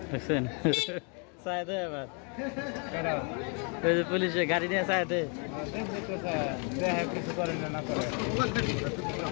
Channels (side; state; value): right; quieter; 37.3 dB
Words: দেখছেন চায় দে এবার ওই যে পুলিশে গাড়ি নিয়ে চায় দে। কিছু করে না করে